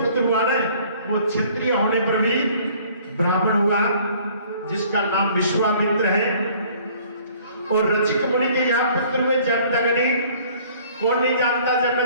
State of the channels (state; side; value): inverted; both; correlation -0.55